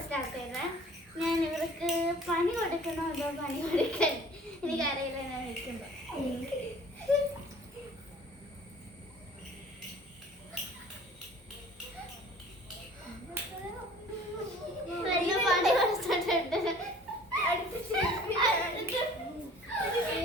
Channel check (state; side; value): normal; both; correlation 0.49